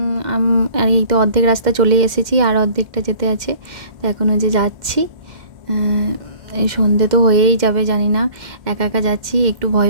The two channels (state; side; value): late; left; 2.1 ms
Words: আর এই তো অর্ধেক রাস্তা চলে এসেছি, আর অর্ধেকটা যেতে আছে। তো এখনও যে যাচ্ছি, এই সন্ধে তো হয়েই যাবে, জানি না। একা একা যাচ্ছি, একটু ভয়